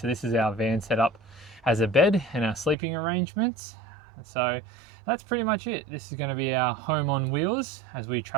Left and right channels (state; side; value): drops out; left; at 2.8 s